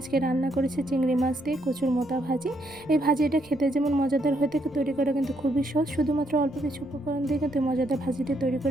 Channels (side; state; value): right; noise; rumble, 24 dB below the sound